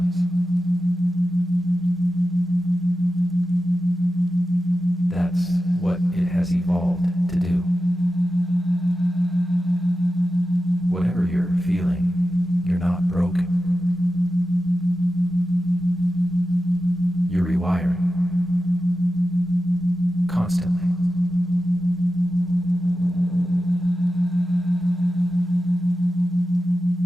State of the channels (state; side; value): normal; both; correlation 0.93